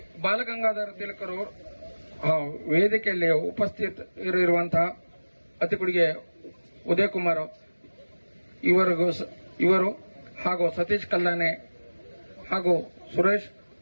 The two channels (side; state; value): both; inverted; correlation -1.00